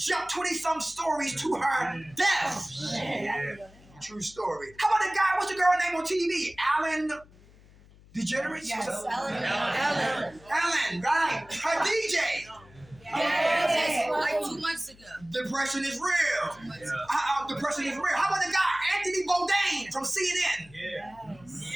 20-some stories to her death. True story. How about the guy, what's the girl name on TV? Alan DeGeneres? Yes, Ellen, right. Her DJ. Like 2 months ago. Depression is real. Depression is real. How about the guy, Anthony Bourdain from CNN?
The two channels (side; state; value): left; noise; hum, 24 dB below the sound